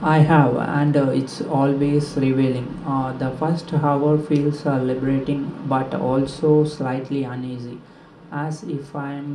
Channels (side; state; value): both; identical; correlation 1.00